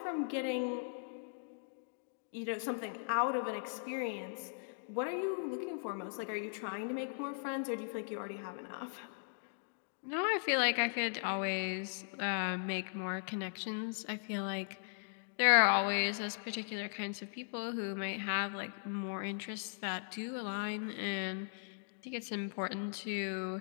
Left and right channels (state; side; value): silent; right; digital silence